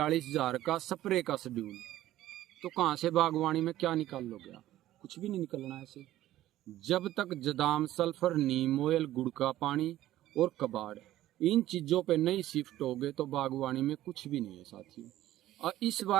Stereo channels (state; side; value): quieter; left; 14.3 dB